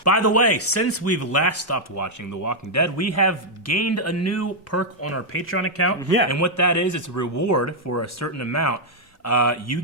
By the way, since we've last stopped watching The Walking Dead, we have gained a new perk on our Patreon account. Yeah. And what that is, it's a reward for a certain amount. You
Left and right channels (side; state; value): both; normal; correlation -0.03